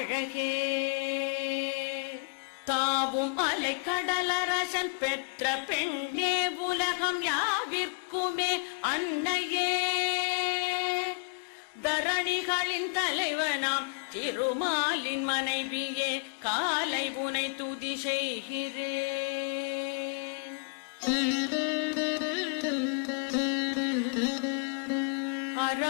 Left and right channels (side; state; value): right; quieter; 39.3 dB